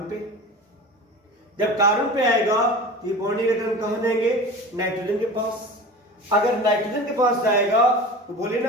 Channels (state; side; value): normal; both; correlation 0.34